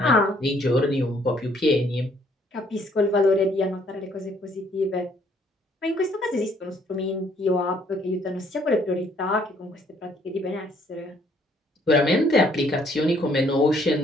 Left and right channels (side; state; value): both; normal; correlation 0.65